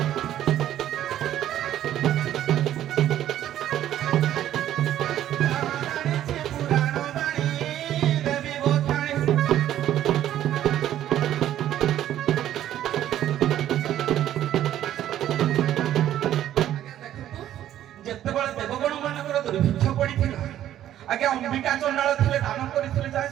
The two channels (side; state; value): left; quieter; 11.9 dB